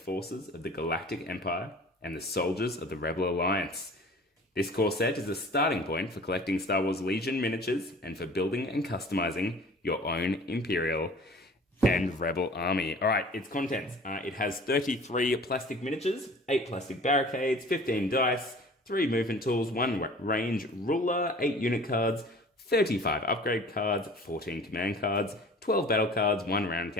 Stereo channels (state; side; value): normal; both; correlation 0.45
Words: of the Galactic Empire and the soldiers of the Rebel Alliance. This core set is a starting point for collecting Star Wars Legion miniatures and for building and customizing your own Imperial and Rebel army. Alright, its contents. It has 33 plastic miniatures, 8 plastic barricades, 15 dice, 3 movement tools, 1 range ruler, 8 unit cards, 35 upgrade cards, 14 command cards, 12 battle cards, 1 round